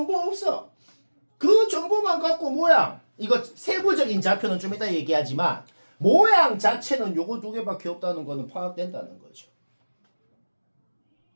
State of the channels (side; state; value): both; inverted; correlation -1.00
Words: 없어. 그 정보만 갖고 모양 이거 세부적인 좌표는 좀 이따 얘기하지만 모양 자체는 요거 두 개밖에 없다는 거는 파악된다는 거죠.